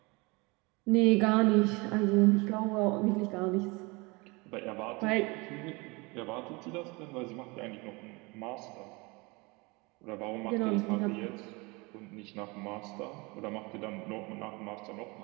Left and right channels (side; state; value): left; quieter; 26.4 dB